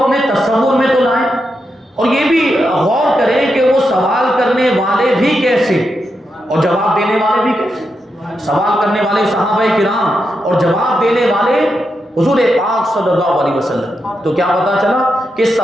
تصور میں تو لائیں، اور یہ بھی غور کریں کہ وہ سوال کرنے والے بھی کیسے اور جواب دینے والے بھی کیسے۔ سوال کرنے والے صحابہ کرام اور جواب دینے والے حضور پاک صلی اللہ علیہ وسلم۔ تو کیا پتا چلا کہ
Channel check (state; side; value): normal; both; correlation 0.85